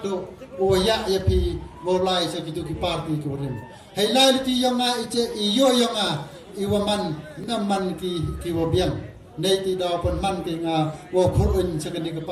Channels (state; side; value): identical; both; correlation 1.00